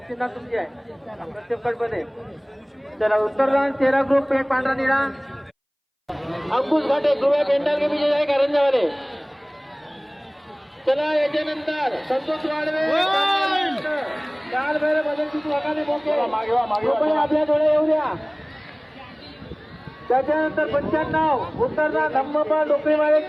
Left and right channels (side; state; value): both; identical; correlation 1.00